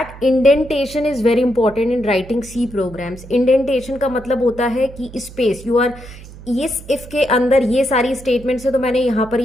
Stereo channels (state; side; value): noise; right; hum, 17 dB below the sound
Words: indentation is very important in writing C programs. Indentation का मतलब होता है कि स्पेस, यू आर इस इफ के अंदर ये सारी स्टेटमेंट्स है तो मैंने यहाँ पर